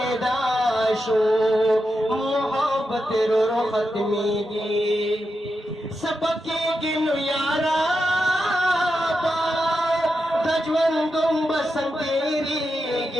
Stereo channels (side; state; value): both; normal; correlation 0.87